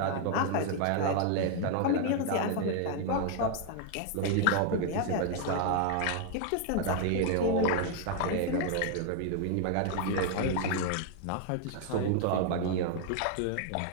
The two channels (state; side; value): different; both; correlation 0.00